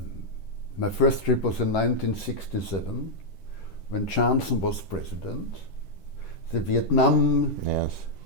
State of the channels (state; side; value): late; right; 10 ms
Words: first trip was in 1967, when Johnson was president. The Vietnam